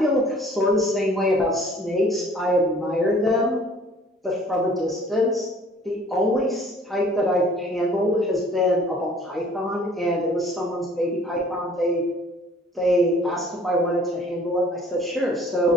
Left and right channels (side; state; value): both; normal; correlation 0.53